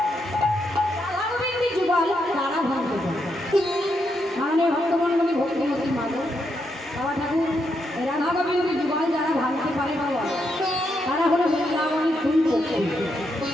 রাধা গোবিন্দের যুগল তারা ভাঙতে পারে। মাননীয় ভক্তমণ্ডলী ভক্তিমতী মাধব বাবা ঠাকুর রাধা গোবিন্দের যুগল যারা ভাঙতে পারে বাবা তারা হলো বৃন্দাবনের দুই পক্ষী।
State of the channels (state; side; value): normal; both; correlation 0.80